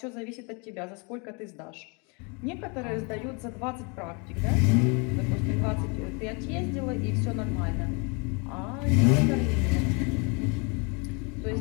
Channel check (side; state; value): right; quieter; 32.6 dB